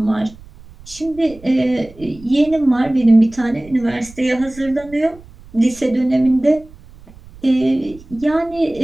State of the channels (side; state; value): right; noise; rumble, 21 dB below the sound